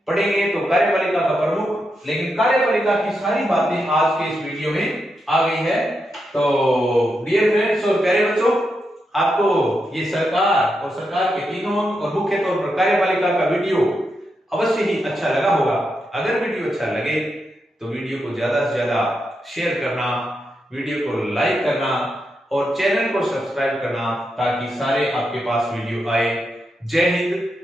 पढ़ेंगे तो कार्यपालिका का प्रमुख, लेकिन कार्यपालिका की सारी बातें आज के इस वीडियो में आ गई है। तो डियर फ्रेंड्स और प्यारे बच्चों, आपको ये सरकार और सरकार के तीनों और मुख्य तौर पर कार्यपालिका का वीडियो अवश्य ही अच्छा लगा होगा। अगर वीडियो अच्छा लगे तो वीडियो को ज्यादा से ज्यादा शेयर करना, वीडियो को लाइक करना और चैनल को सब्सक्राइब करना ताकि सारे आपके पास वीडियो आए। जय हिंद,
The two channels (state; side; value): normal; both; correlation 0.85